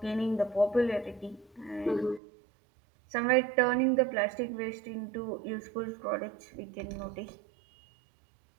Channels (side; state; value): left; drops out; at 2.2 s